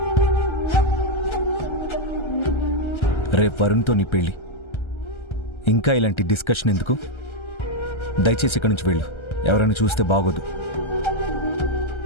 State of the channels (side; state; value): right; late; 1.3 ms